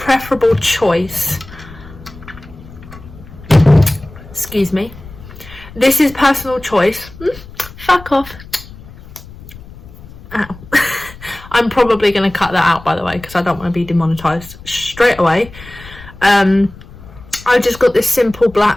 choice, excuse me, this is personal choice. Fuck off. Ow. I'm probably going to cut that out, by the way, because I don't want to be demonetized straight away. I just got this simple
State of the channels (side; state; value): left; noise; rumble, 18 dB below the sound